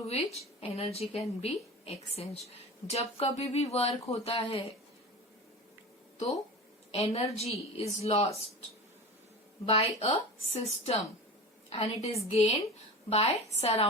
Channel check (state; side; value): normal; both; correlation 0.31